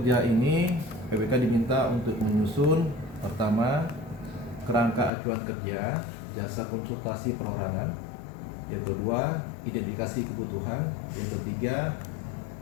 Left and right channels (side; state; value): right; drops out; at 5.1 s